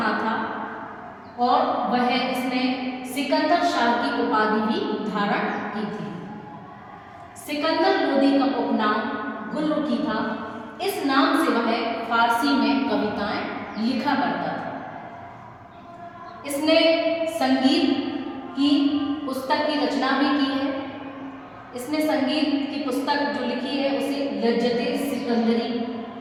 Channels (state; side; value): identical; both; correlation 1.00